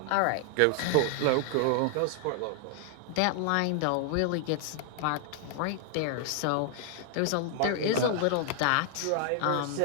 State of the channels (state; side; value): different; both; correlation 0.00